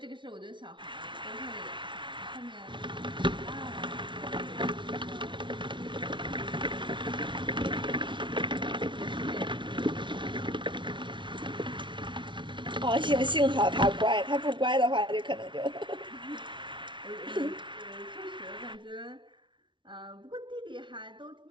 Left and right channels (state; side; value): late; left; 0.24 ms